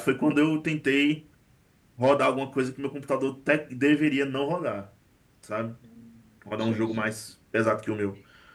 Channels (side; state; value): both; identical; correlation 1.00